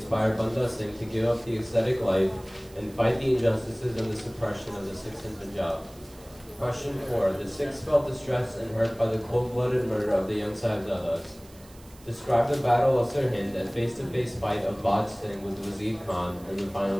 Banda Singh to give up the ascetic life and fight the injustices and the suppression of the Sikhs in Punjab? Question 4. The Sikhs felt distressed and hurt by the cold-blooded murder of the young Sahibzadas. Describe the Battle of Sirhind and face-to-face fight of Baj Singh with Wazir Khan and the final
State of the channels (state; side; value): noise; right; hiss, 24 dB below the sound